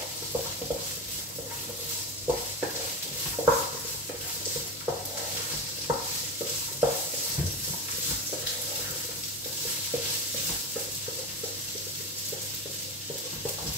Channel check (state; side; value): normal; both; correlation 0.22